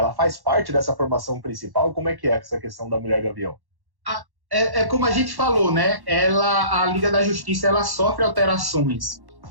faz parte dessa formação principal? Como é que é essa questão da Mulher Gavião? É como a gente falou, né? A Liga da Justiça, ela sofre alterações,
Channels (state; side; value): late; left; 1.1 ms